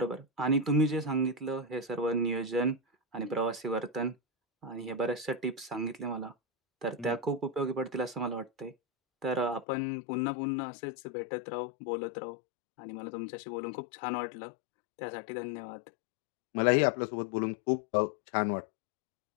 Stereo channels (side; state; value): right; drops out; at 9.7 s